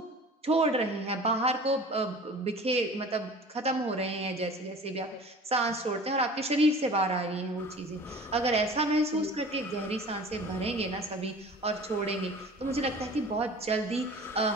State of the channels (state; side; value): normal; both; correlation 0.42